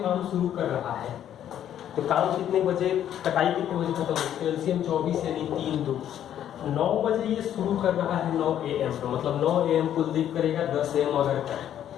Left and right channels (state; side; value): quieter; right; 10.6 dB